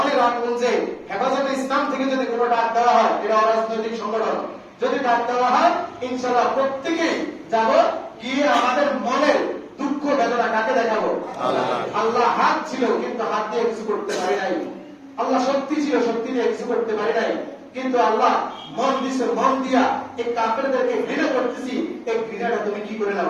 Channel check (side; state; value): both; identical; correlation 1.00